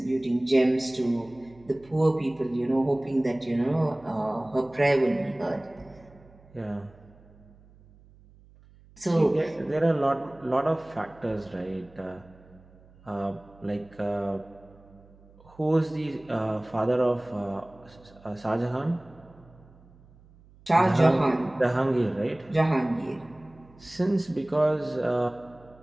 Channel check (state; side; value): noise; right; hum, 26 dB below the sound